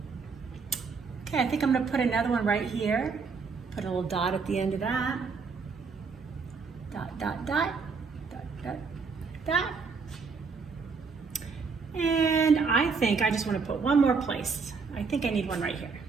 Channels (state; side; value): quieter; left; 4.9 dB